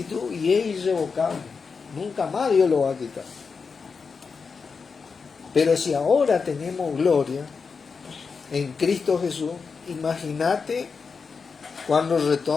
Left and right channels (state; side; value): quieter; right; 5.2 dB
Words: y es irrevocable. Nunca más Dios lo va a quitar. Pero si ahora tenemos gloria en Cristo Jesús, imagínate cuando